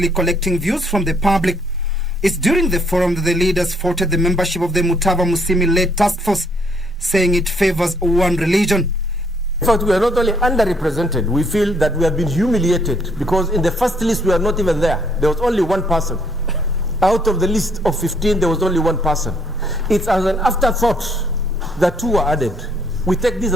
collecting views from the public. It's during the forum that the leaders faulted the membership of the Mutava Musyimi-led task force, saying it favors one religion. In fact, we are not only underrepresented, we feel that we have been humiliated because in the first list we are not even there. There was only one person. Out of the list of 15, there was only one person. It's as an afterthought that 2 were added. We take this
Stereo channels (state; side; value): normal; both; correlation 0.68